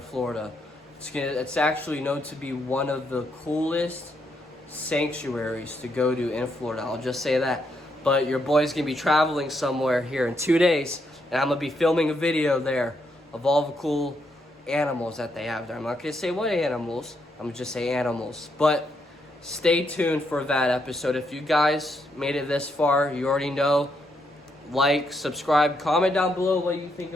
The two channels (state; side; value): normal; both; correlation 0.78